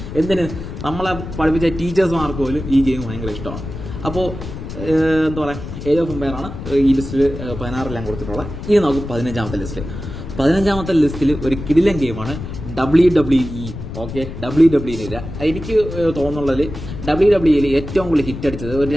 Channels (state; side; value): noise; left; rumble, 9 dB below the sound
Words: എന്തിന് നമ്മളെ പഠിപ്പിച്ച ടീച്ചേഴ്സ്മാർക്ക് പോലും ഈ ഗെയിം ഭയങ്കര ഇഷ്ടമാണ്. അപ്പോൾ എന്താ പറയുക ഏജ് ഓഫ് എംപയർ ആണ് ഈ ലിസ്റ്റിൽ 16 കൊടുത്തിട്ടുള്ളത്. ഇനി നമുക്ക് 15ാമത്തെ ലിസ്റ്റിൽ ഒരു കിടിലൻ ഗെയിമാണ് WWE. ഓക്കെ, WWE എനിക്ക് തോന്നുന്നുള്ളതിൽ WWE ഏറ്റവും കൂടുതൽ ഹിറ്റ് അടിച്ചത് ഒരു